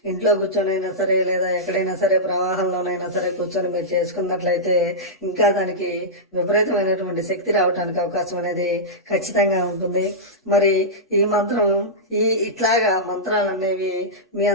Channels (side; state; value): both; normal; correlation -0.12